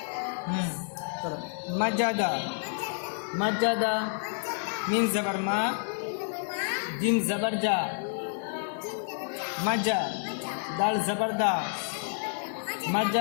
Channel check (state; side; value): silent; right; 58 dB below the other